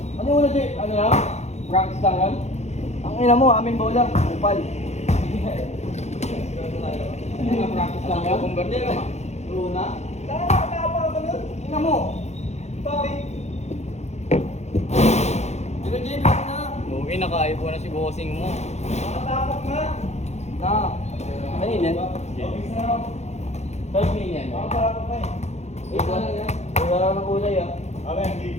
Ano yung una, Jay? Ano lang? Practice lang yan? Ang ina mo, amin bola. Upal. Ano nga, practice lang yan? Converter ka ma? Luna? Nakakapa ka nun? Ina mo. Bakit? Pero Jay, black na. Lugi, naka-ipo na si bossing mo. Nakatapak na. Na. Ano yun yan? Third pin yan. Nakatapak na eh. Wait lang yan. Wala lang ng kulay ah. Abim, di.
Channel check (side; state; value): right; late; 0.32 ms